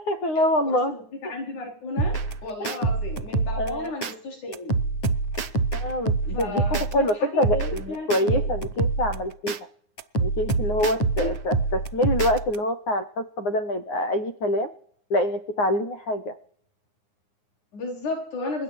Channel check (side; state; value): right; late; 9.6 ms